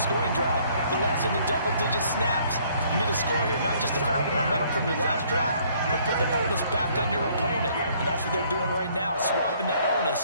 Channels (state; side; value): inverted; both; correlation -0.62